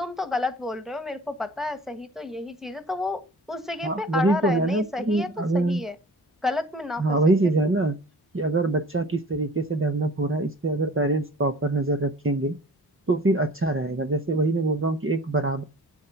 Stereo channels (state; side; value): normal; both; correlation 0.45